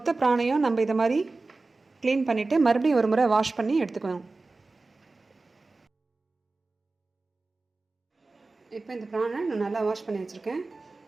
பிராணையும் நம்ம இதை மாதிரி க்ளீன் பண்ணிவிட்டு மறுபடியும் ஒரு முறை வாஷ் பண்ணி எடுத்துக்கணும். இப்போ இந்த ப்ரானை நான் நல்லா வாஷ் பண்ணி வச்சுருக்கேன்.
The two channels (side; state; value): left; quieter; 3.5 dB